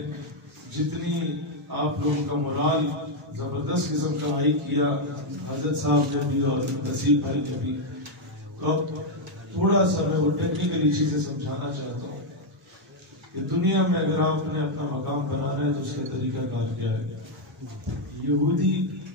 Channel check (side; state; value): both; normal; correlation 0.01